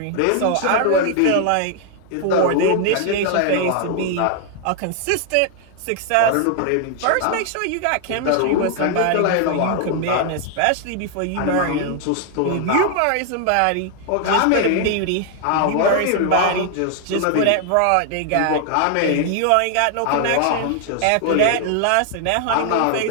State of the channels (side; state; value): both; different; correlation 0.00